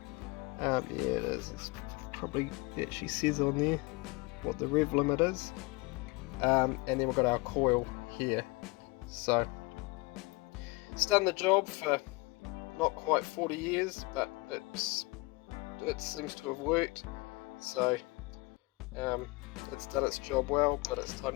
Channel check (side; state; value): right; quieter; 26.1 dB